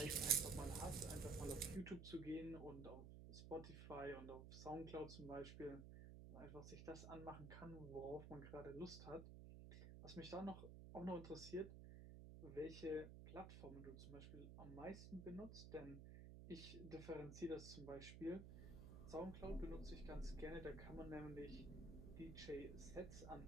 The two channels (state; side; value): noise; right; hum, 9 dB below the sound